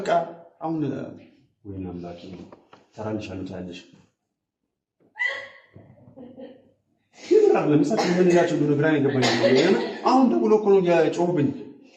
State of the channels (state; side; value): identical; both; correlation 1.00